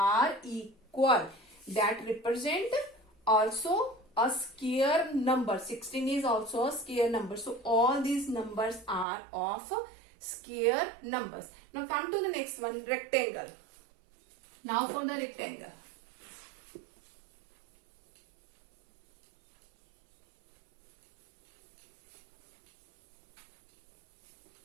equal. That represent also a square number. 16 is also a square number. So all these numbers are of square numbers. Now come to the next one, rectangle. Now for the rectangle.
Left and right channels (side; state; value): left; drops out; at 9.1 s